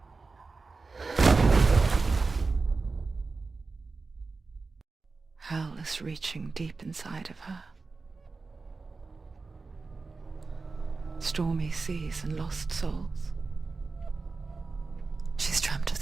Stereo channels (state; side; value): quieter; left; 4.0 dB